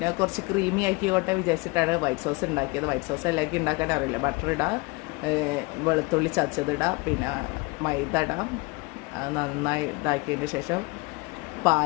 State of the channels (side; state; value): right; quieter; 25.4 dB